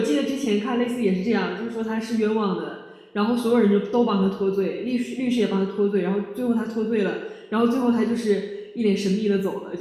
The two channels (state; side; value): identical; both; correlation 1.00